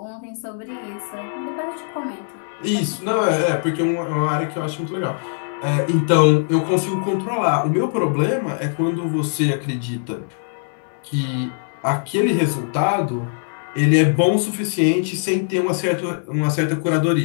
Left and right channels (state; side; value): silent; right; digital silence